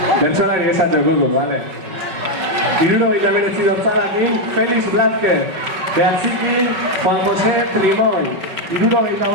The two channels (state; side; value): late; left; 5.3 ms